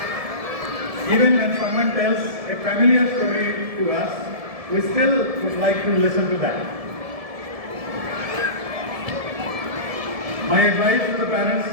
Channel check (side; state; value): left; late; 1.7 ms